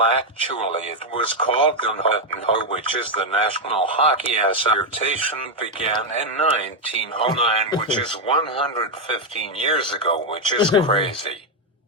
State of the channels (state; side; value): normal; both; correlation 0.02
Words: actually it was called the NHL, which is the National Hockey Association, began in 1909, which is 115 years ago, which is crazy.